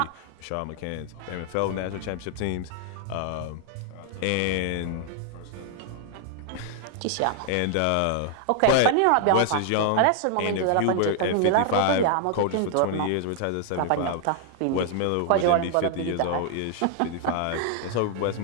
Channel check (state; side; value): different; both; correlation 0.00